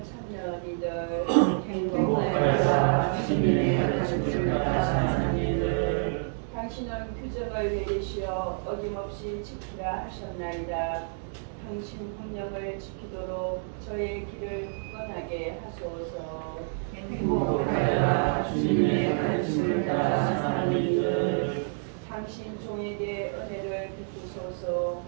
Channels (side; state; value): left; silent; digital silence